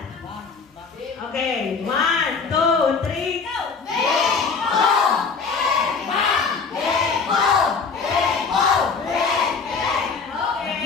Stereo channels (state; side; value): quieter; right; 5.0 dB